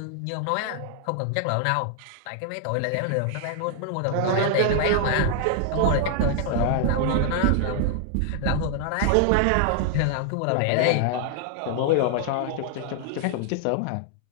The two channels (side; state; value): both; different; correlation 0.00